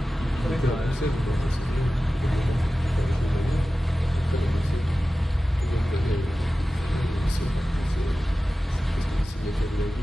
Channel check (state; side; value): normal; both; correlation 0.95